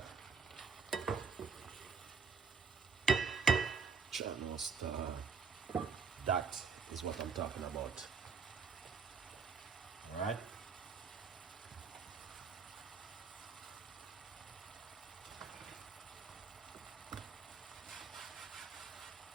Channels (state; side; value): quieter; left; 5.5 dB